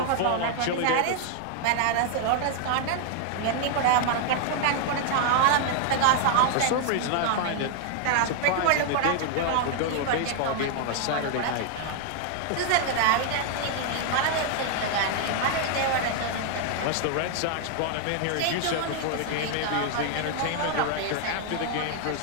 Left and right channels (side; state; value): both; different; correlation 0.00